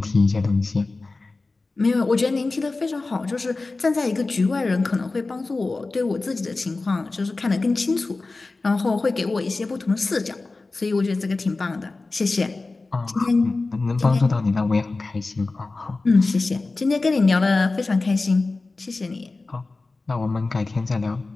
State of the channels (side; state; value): right; quieter; 3.5 dB